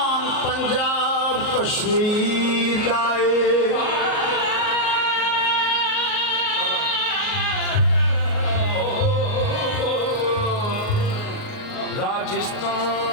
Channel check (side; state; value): right; late; 38 ms